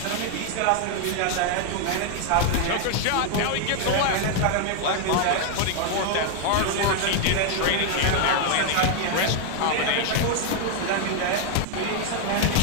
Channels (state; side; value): different; both; correlation 0.00